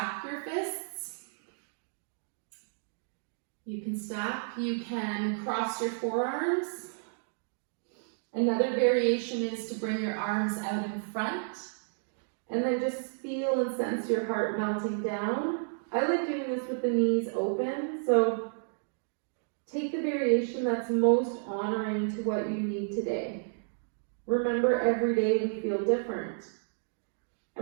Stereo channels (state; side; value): silent; left; digital silence